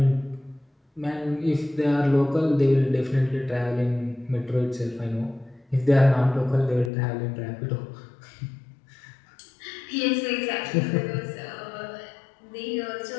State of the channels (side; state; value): right; drops out; at 6.9 s